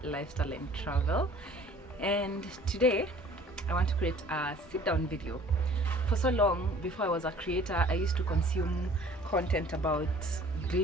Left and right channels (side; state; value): both; normal; correlation 0.51